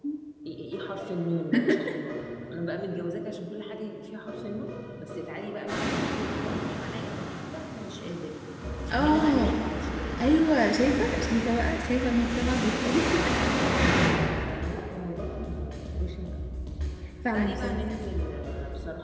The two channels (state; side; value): identical; both; correlation 1.00